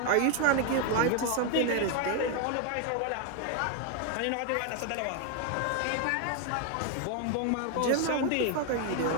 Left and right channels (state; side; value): different; both; correlation 0.01